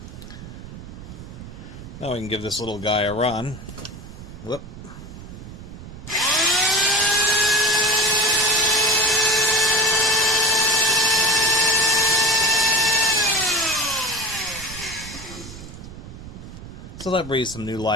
Now we can give this little guy a run. Whoop. So that breathes some new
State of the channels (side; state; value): right; noise; rumble, 14 dB below the sound